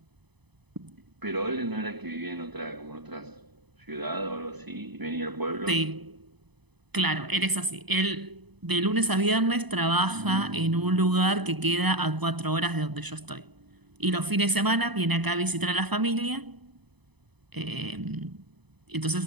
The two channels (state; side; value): late; left; 0.99 ms